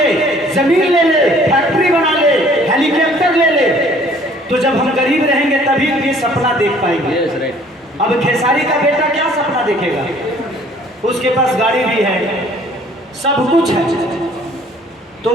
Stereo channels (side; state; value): both; normal; correlation 0.56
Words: जमीन ले ले, फैक्ट्री बना ले, हेलीकॉप्टर ले ले। तो जब हम गरीब रहेंगे तभी ये सपना देख पाएंगे। अब खेसारी का बेटा क्या सपना देखेगा? उसके पास गाड़ी भी है, सब कुछ है, तो